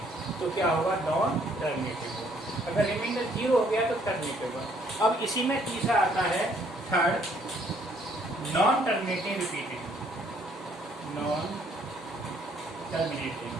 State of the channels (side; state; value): both; normal; correlation 0.65